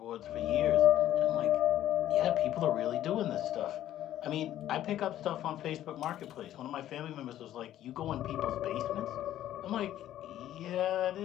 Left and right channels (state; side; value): quieter; right; 12.5 dB